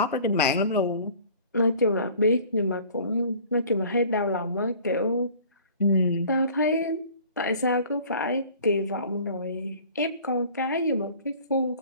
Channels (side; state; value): both; inverted; correlation -0.48